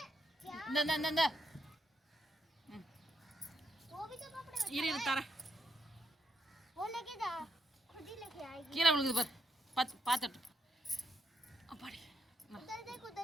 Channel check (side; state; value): both; normal; correlation 0.79